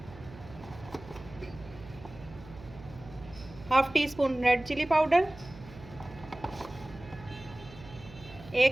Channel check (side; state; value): right; noise; hum, 17 dB below the sound